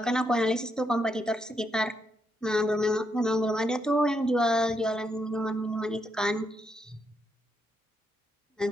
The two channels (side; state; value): both; normal; correlation 0.79